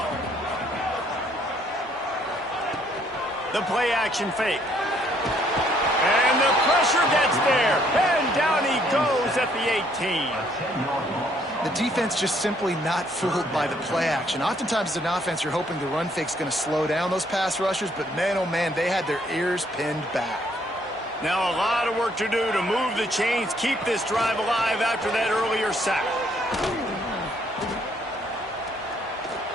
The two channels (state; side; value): normal; both; correlation 0.67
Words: The play action fake. And the pressure gets there. And down he goes at the 18. The defense just simply not fooled by the play action. Oftentimes as an offense, you're hoping the run fake's going to slow down those pass rushers, but man, oh man, they had their ears pinned back. Now a lot of work to do to move the chains, keep this drive alive after that earlier sack.